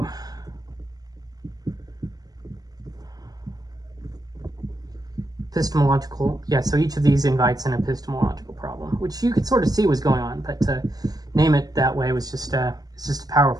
Epistemological, yeah, so each of these invites an epistemological problem, which you could sort of see was going on, but to name it that way was just it's just a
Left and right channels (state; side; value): late; left; 0.19 ms